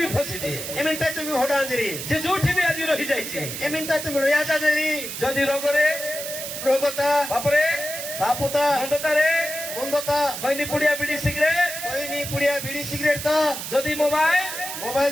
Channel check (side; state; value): right; noise; hiss, 7 dB below the sound